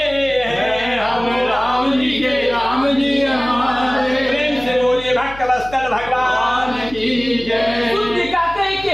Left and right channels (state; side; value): noise; left; hum, 17 dB below the sound